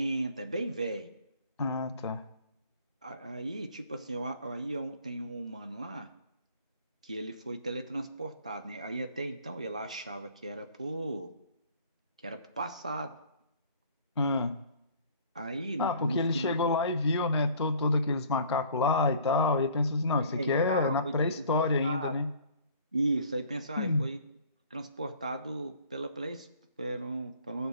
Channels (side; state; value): both; inverted; correlation -0.52